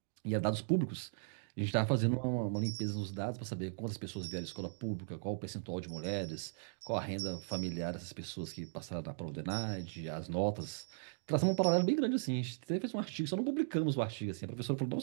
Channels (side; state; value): left; silent; digital silence